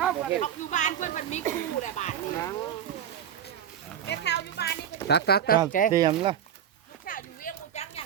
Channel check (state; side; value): quieter; left; 9.4 dB